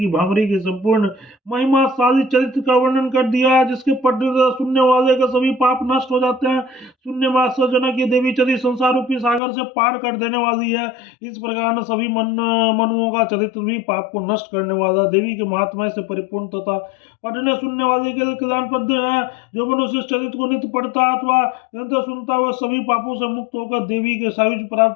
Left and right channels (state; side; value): drops out; right; at 9.4 s